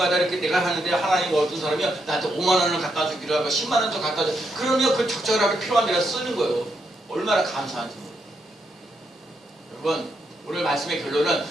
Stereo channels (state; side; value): normal; both; correlation 0.80